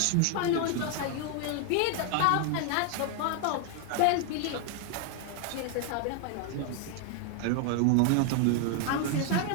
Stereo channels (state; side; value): different; both; correlation 0.00